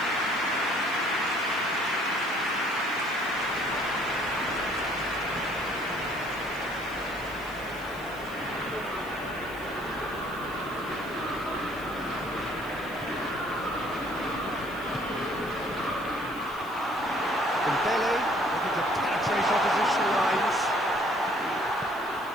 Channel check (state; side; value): noise; left; hiss, 20 dB below the sound